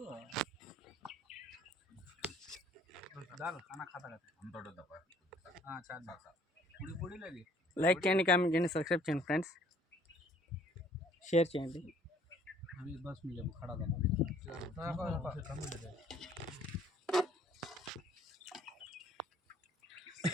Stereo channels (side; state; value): both; normal; correlation 0.58